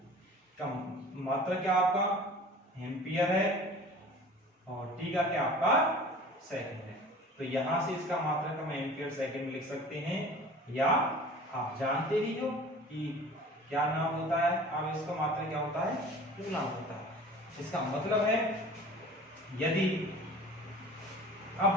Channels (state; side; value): normal; both; correlation 0.43